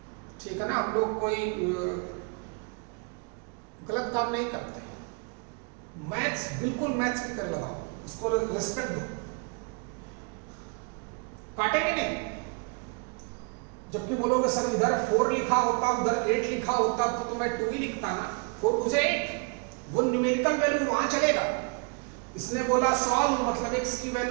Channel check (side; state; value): left; quieter; 35.5 dB